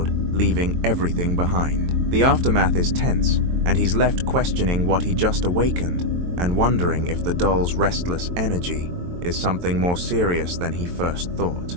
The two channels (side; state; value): left; late; 23 ms